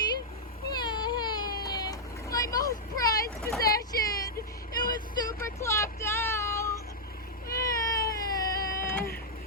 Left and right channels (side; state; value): both; normal; correlation -0.06